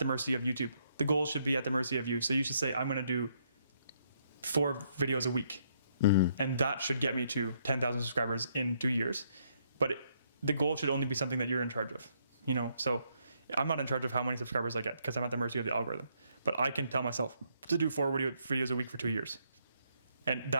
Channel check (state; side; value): inverted; both; correlation -0.73